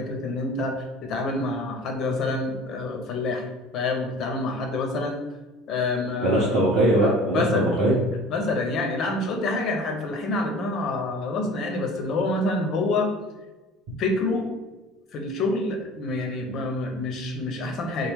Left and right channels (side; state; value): both; normal; correlation 0.44